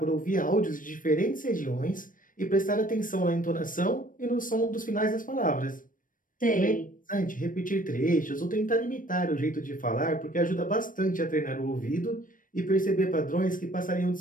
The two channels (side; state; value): right; late; 0.39 ms